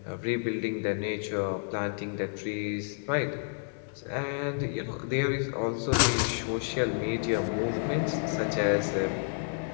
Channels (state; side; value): silent; right; 58 dB below the other